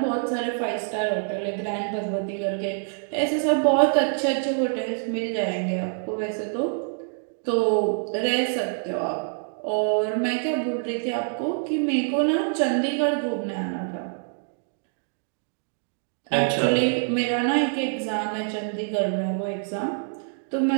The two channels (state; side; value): silent; left; digital silence